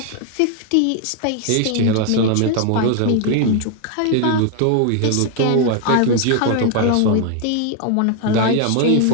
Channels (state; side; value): different; both; correlation 0.01